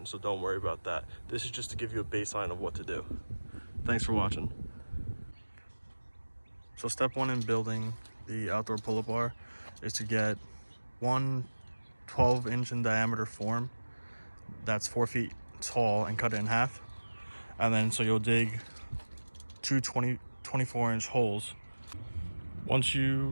so don't worry about that. This is just to give you a baseline of what to do. Thanks for watching. So step one in building the outdoor pull-up bar is to get one 12-inch in diameter form that's 4 feet tall and cut it in half. And then so you'll dig two 24-inch holes. Once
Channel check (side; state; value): both; inverted; correlation -1.00